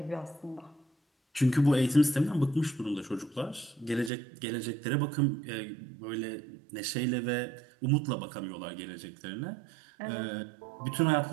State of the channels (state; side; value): drops out; left; at 4.1 s